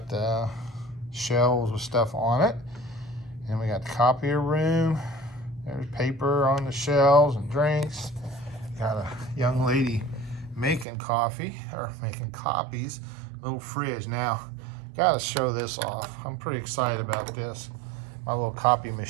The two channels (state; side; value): drops out; left; at 10.9 s